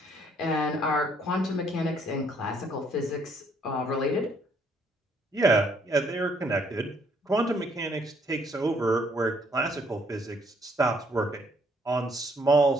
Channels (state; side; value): normal; both; correlation 0.67